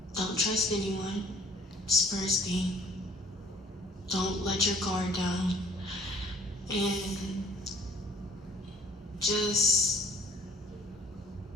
Don't trust anyone. It's first thing. Don't let your guard down. And just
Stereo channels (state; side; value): normal; both; correlation 0.55